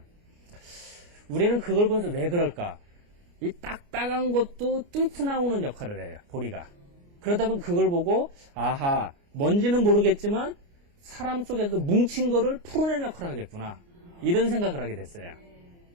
우리는 그걸 보면서 왜 그럴까? 이 딱딱한 것도 뚫고 나오는 역할을 해요, 보리가. 그러다 보면 그걸 보고, 아하, 뭔지는 모르겠지만, 사람 속에서 뭉친 거를 풀어내는 역할을 하겠구나. 이런 생각을 하게 됐어요.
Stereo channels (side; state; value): left; late; 29 ms